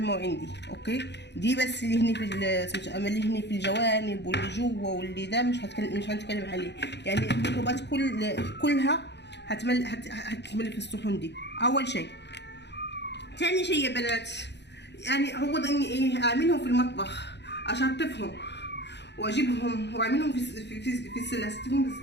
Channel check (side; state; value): right; late; 0.50 ms